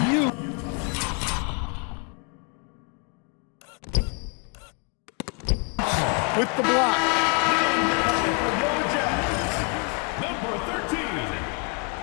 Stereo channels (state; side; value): quieter; right; 37.3 dB